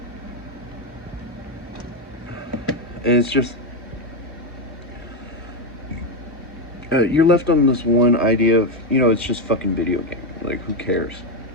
And it's just, you're left on this one idea of, it's just fucking video game. Like, who cares?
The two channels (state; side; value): normal; both; correlation 0.07